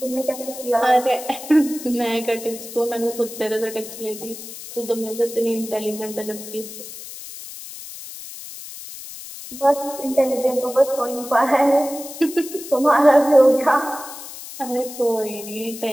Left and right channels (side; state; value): left; noise; hiss, 12 dB below the sound